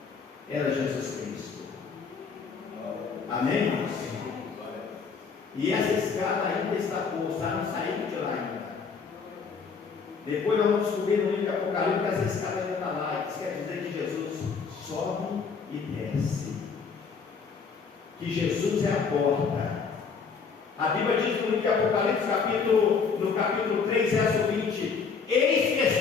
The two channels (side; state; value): right; quieter; 5.5 dB